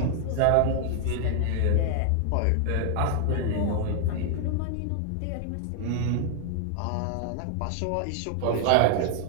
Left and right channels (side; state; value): both; different; correlation 0.00